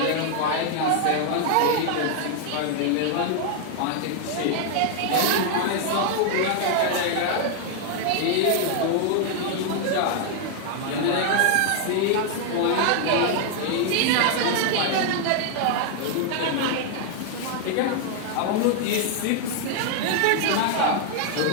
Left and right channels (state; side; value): different; both; correlation 0.00